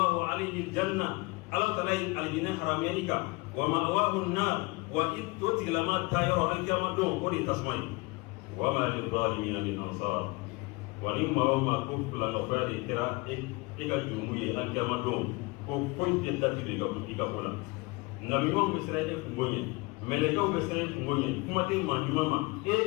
alayhi al-janna ala taala ye alijinɛ haramuya i kan wa ma'wahu an-nar wa i to tigilama taa yɔrɔ alikiyama don o de ye tasuma ye wa ma lil-zalimina min ansar wa ni maa o maa ko filanɛkoya de kɛra e ka jurumu ye alikiyama don ko foyi tɛ dati don i ka ko la nabiɲumanw bɛ siran e kungo ɲɛ mɛlɛkɛw bɛ siran e kungo ɲɛ kuma tɛ maa ɲuman ma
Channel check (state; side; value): quieter; right; 25.1 dB